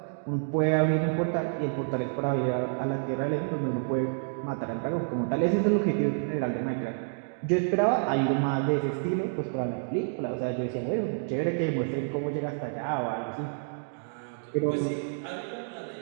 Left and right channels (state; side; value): silent; left; digital silence